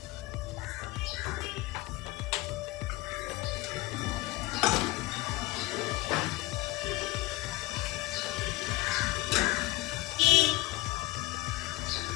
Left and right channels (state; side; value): quieter; right; 20.1 dB